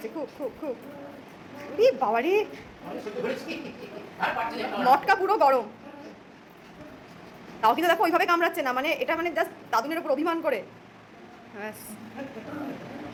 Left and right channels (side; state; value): both; identical; correlation 1.00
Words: খুব খুব খুব। বাবা রে, মটকা পুরো গরম। তাও কিন্তু দেখো ওইভাবে কামড়াচ্ছে না, মানে এটা মানে জাস্ট দাদুনের উপর অভিমান করে। ব্যাস,